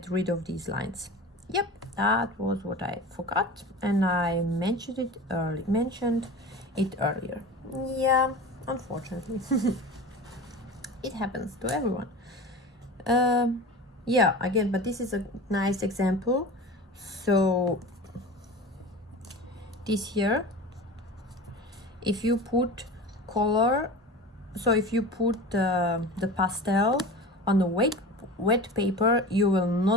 rid of these lines. Yep, that was what I forgot, and I mentioned it earlier. Yeah, unfortunately. It happens to everyone. Yeah, again, but this is a nice example. So this here, if you put color, so if you put the pastel on the wet paper, you will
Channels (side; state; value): both; normal; correlation 0.33